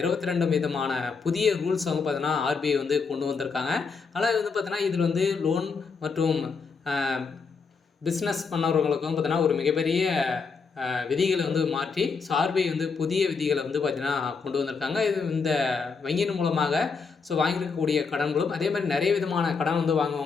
விதமான புதிய ரூல்ஸ் வந்து பார்த்தீங்கன்னா ஆர்பிஐ வந்து கொண்டு வந்திருக்காங்க. ஆனால் வந்து பார்த்தீங்கன்னா இதில் வந்து லோன் மற்றும் பிஸ்னஸ் பண்ணவர்களுக்கும் பார்த்தீங்கன்னா ஒரு மிகப்பெரிய விதிகளை வந்து மாற்றி ஆர்பிஐ வந்து புதிய விதிகளை வந்து பார்த்தீங்கன்னா கொண்டு வந்திருக்காங்க. இது இந்த வங்கியின் மூலமாக வாங்கியிருக்கக்கூடிய கடன்களும் அதே மாதிரி நிறைய விதமான கடன் வந்து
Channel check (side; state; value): right; quieter; 5.0 dB